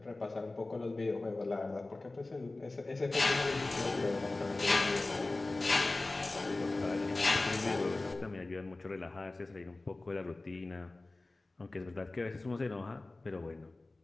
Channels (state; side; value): quieter; right; 3.1 dB